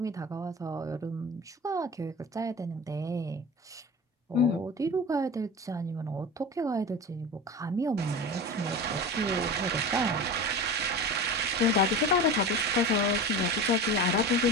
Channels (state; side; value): normal; both; correlation 0.30